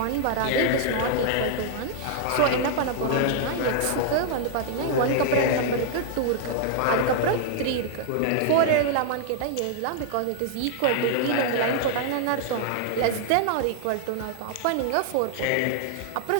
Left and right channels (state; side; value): different; both; correlation 0.00